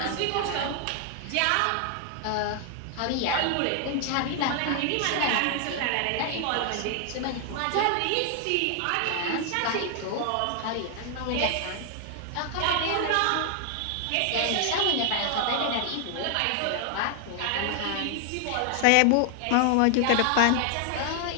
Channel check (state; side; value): different; both; correlation 0.00